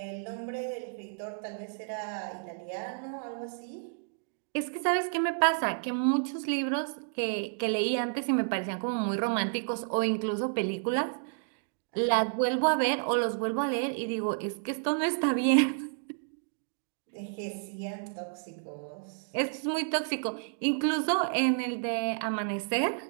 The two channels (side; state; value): left; silent; digital silence